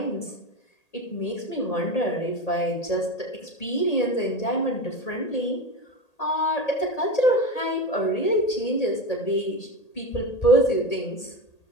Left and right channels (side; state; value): right; late; 1.8 ms